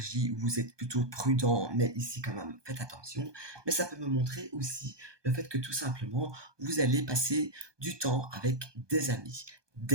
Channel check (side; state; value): left; late; 1.2 ms